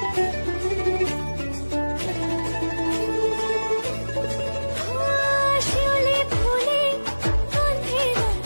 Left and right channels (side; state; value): both; inverted; correlation -1.00